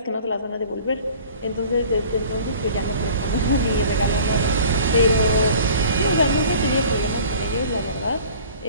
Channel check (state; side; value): inverted; both; correlation -0.47